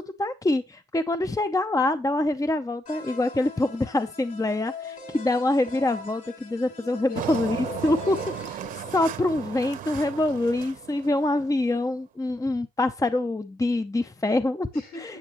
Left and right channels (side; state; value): both; normal; correlation 0.82